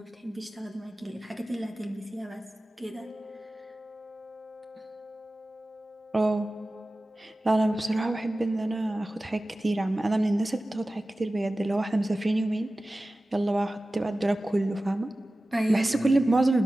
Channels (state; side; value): normal; both; correlation 0.96